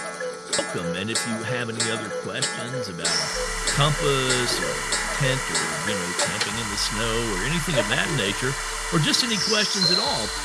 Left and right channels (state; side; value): identical; both; correlation 1.00